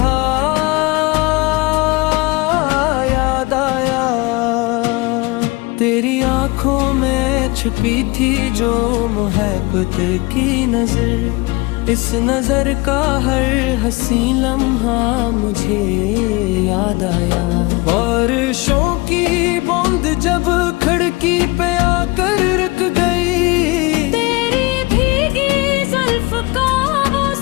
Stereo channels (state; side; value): quieter; right; 24.6 dB